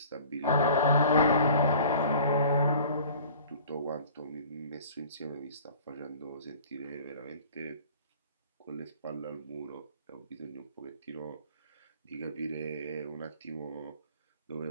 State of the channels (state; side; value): inverted; both; correlation -0.46